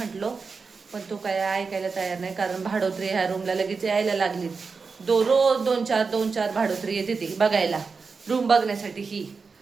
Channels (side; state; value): left; quieter; 4.8 dB